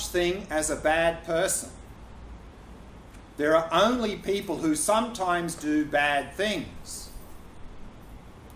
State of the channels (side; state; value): both; identical; correlation 1.00